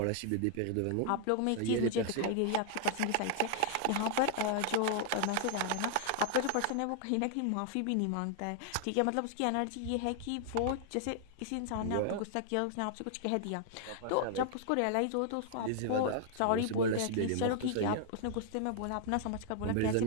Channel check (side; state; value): both; different; correlation -0.01